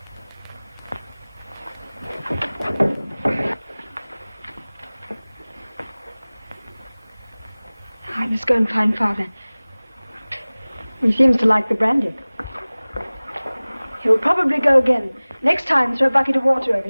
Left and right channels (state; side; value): inverted; both; correlation -1.00